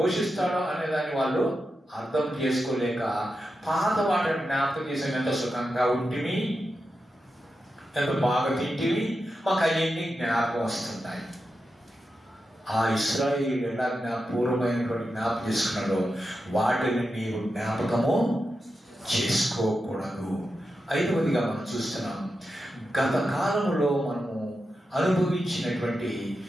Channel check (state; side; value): normal; both; correlation 0.89